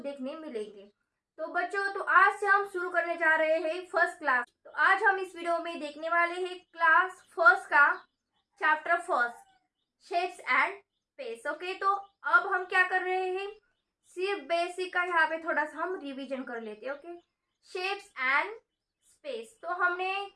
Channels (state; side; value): identical; both; correlation 1.00